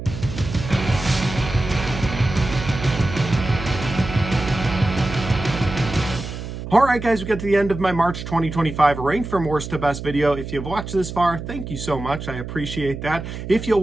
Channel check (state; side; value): noise; right; hum, 8 dB below the sound